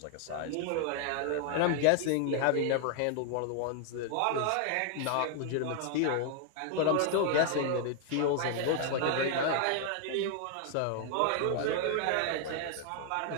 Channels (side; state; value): both; different; correlation 0.00